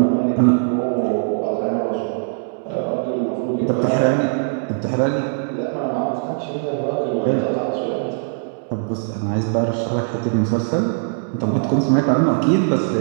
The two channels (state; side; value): silent; left; 65 dB below the other